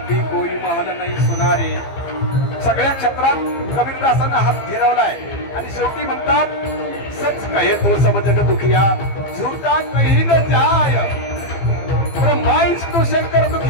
कोई महल नाही सुनारे सगळ्या क्षेत्रात कबीरदासांना हात फिरवलाय आणि शेवटी म्हणतात सच कहे तो सब जग दुखिया झूठा कहीं न जाय ब्रह्मा विष्णू शंकर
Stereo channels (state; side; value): late; right; 15 ms